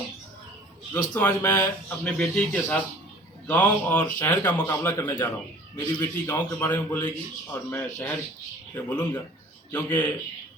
दोस्तों, आज मैं अपने बेटी के साथ गांव और शहर का मुकाबला करने जा रहा हूं। मेरी बेटी गांव के बारे में बोलेगी और मैं शहर पे बोलूँगा, क्योंकि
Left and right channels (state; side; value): normal; both; correlation 0.48